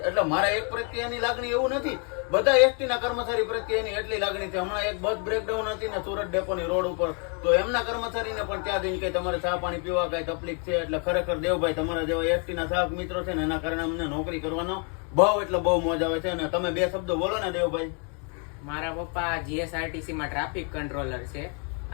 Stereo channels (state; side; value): quieter; right; 38.0 dB